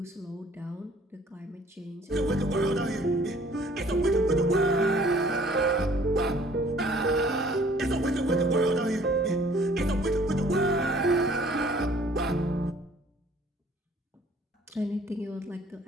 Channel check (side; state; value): both; normal; correlation 0.56